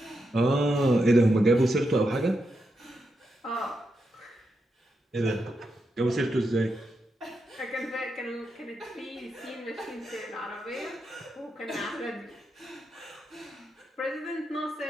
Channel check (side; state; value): both; normal; correlation 0.85